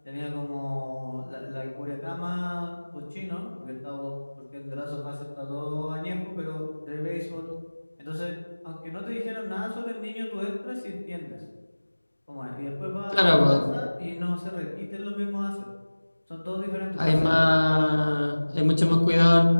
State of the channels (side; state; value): both; inverted; correlation -1.00